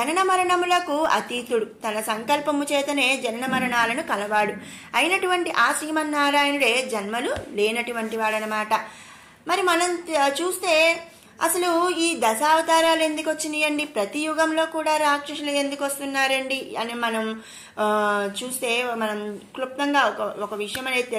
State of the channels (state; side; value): identical; both; correlation 1.00